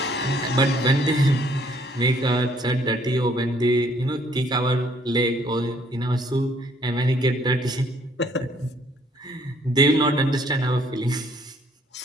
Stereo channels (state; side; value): normal; both; correlation 0.63